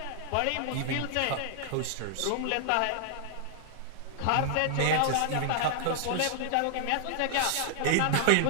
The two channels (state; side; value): different; both; correlation 0.00